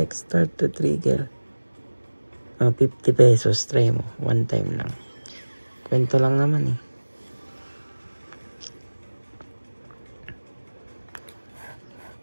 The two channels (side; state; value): both; inverted; correlation -1.00